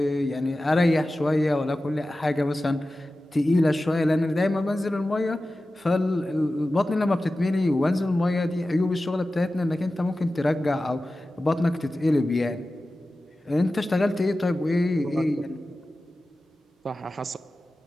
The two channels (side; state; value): both; normal; correlation 0.95